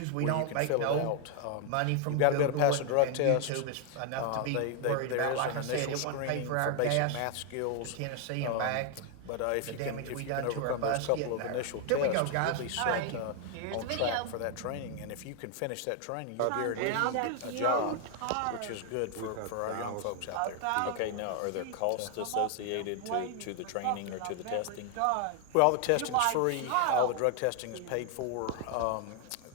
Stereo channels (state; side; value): different; both; correlation 0.00